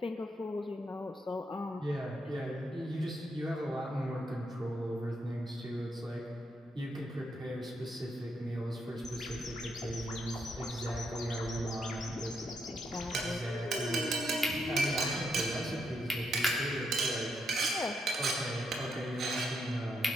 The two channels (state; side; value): normal; both; correlation 0.79